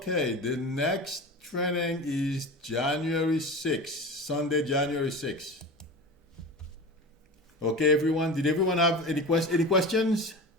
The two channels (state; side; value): normal; both; correlation 0.31